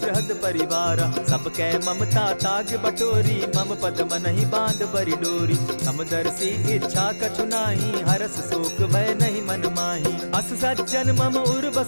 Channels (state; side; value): inverted; both; correlation -1.00